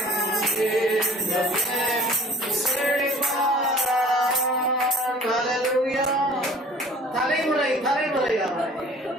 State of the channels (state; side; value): normal; both; correlation 0.48